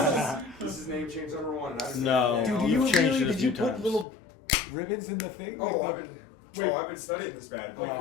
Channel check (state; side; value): drops out; right; at 4.0 s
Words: this is name change number 1. No. Dude, do you really? Did you put little ribbons in the thing? Oh, I've been studying this bad. Like